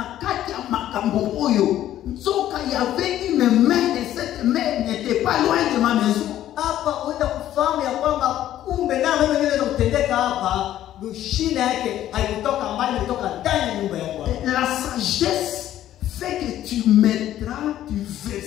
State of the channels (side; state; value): right; quieter; 12.5 dB